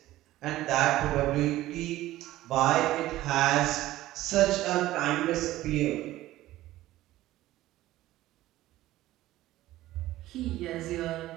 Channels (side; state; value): left; quieter; 15.7 dB